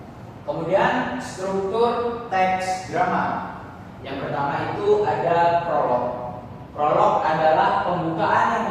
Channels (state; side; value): identical; both; correlation 1.00